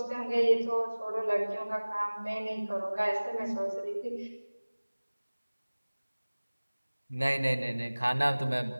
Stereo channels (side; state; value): both; inverted; correlation -1.00